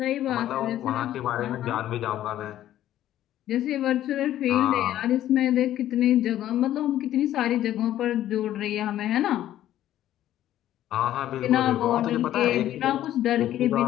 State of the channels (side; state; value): right; quieter; 12.6 dB